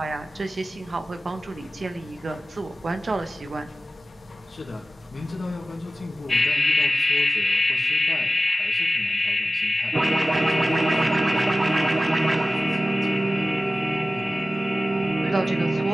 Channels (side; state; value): both; normal; correlation 0.96